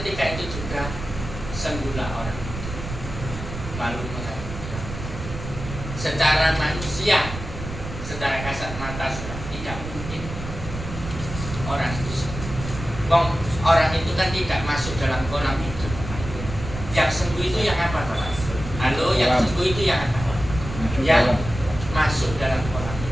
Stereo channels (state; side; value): noise; right; rumble, 8 dB below the sound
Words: itu juga sembuhlah orang. Lalu mengatakan, secara manusia, secara kasat mata, sudah tidak mungkin orang itu sembuh. Orang itu kan tidak masuk dalam kolam hidup. Yang sembuh itu yang apa, Bapak? Halo, yang sembuh itu yang apa? Yang masuk dalam kolam